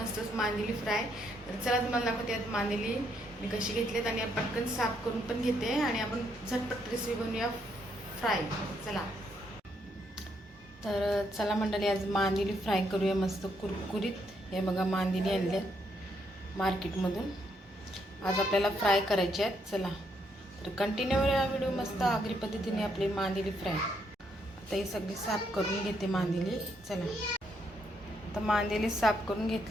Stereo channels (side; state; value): both; normal; correlation 0.75